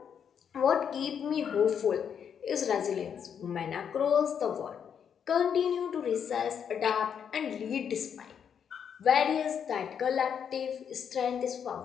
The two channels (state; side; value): quieter; right; 7.8 dB